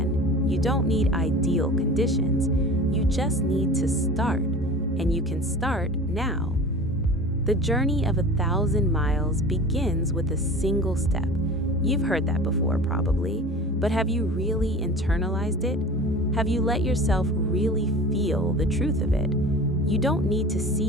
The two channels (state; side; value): normal; both; correlation 0.38